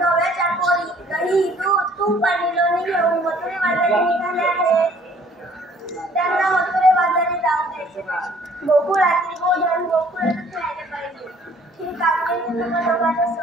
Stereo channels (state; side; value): normal; both; correlation 0.58